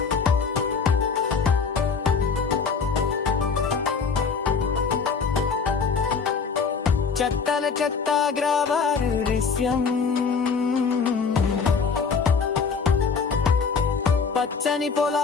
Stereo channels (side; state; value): right; quieter; 5.4 dB